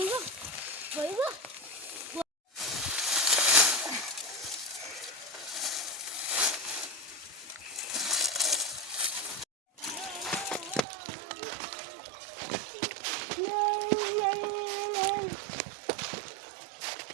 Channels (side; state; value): left; drops out; at 10.9 s